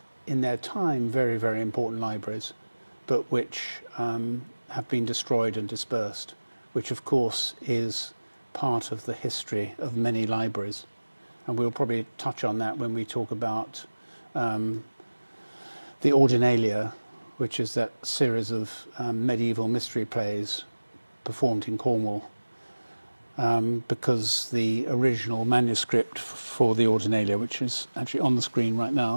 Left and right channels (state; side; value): inverted; both; correlation -1.00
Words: in their time very, very important libraries, but which have been destroyed and dispersed, which of course is part of the history of many libraries. And we'll probably touch on that when we talk about the Ordinalia, which is that series of medieval mystery plays performed in Cornwall, because the original manuscript for the Ordinalia, which is actually on the screen right